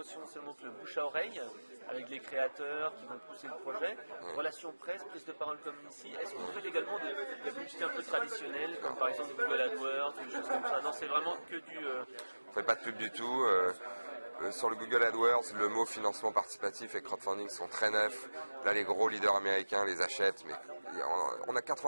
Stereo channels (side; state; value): both; inverted; correlation -1.00